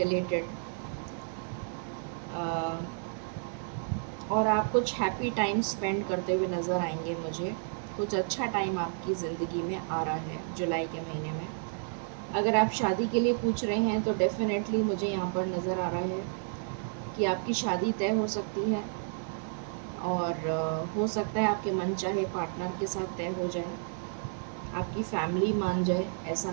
और आप कुछ हैप्पी टाइम स्पेंड करते हुए नज़र आएंगे मुझे। कुछ अच्छा टाइम आपकी ज़िंदगी में आ रहा है जुलाई के महीने में। अगर आप शादी के लिए पूछ रहे हैं, तो डेफ़िनेटली मुझे यहाँ पर नज़र आ रहा है कि आपकी शादी तय हो सकती है, और हो सकता है आपके मनचाहे पार्टनर के साथ तय हो जाए, आपकी फैमिली मान जाए, ऐसा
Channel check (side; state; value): left; silent; digital silence